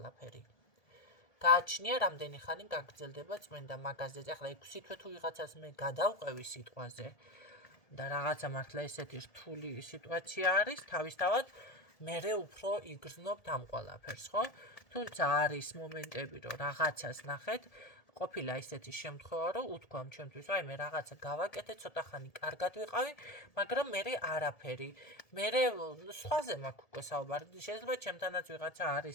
გააჩნია რამდენი ხანი გაგრძელდება წმენდა მაგაზე. ახლა 6 თვე თუ ვიღაცას მე გადავყევი სიტყვაზე და რაღაცა მართლა ესეთი რთული სიტუაცია არის, თავისთავად მერე უფრო იგრძნობთ ამ ყველაფერს, ხო? თუმცა არის მომენტები, რომ რაღაცას ნახეთ, ყოფილა ისეთი შემთხვევა, რომ უთქვამ ჩემთვის, აი მე რაღაცა გავაკეთე, ცოტა ხანი კარგად ვიყავი, მაგრამ მერე არაფერი. მერე სხვაზე მაქვს უკვე საუბარი. შეიძლება ჩემთანაც ვიღაცა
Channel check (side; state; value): right; late; 1.7 ms